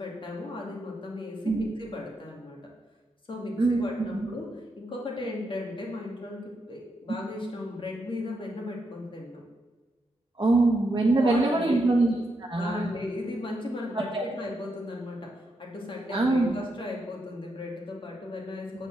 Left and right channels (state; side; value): normal; both; correlation 0.82